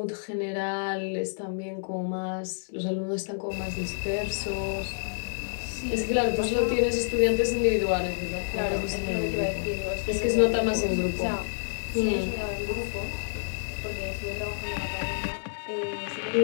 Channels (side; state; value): right; silent; 59 dB below the other